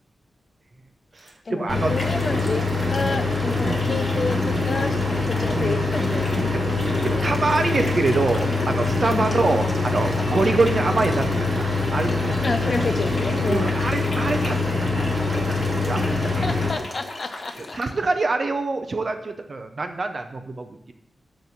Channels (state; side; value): normal; both; correlation 0.84